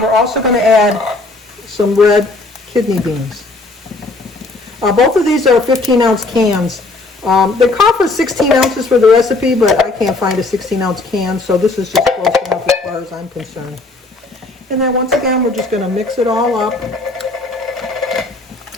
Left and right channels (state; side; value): quieter; right; 3.2 dB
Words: also going to add some red kidney beans. Both of these are 15-ounce cans. They call for 16 ounces for the recipe, but I can't find a 16-ounce can, so this is just close enough as far as I'm concerned. And then once again, we're just going to mix it all up.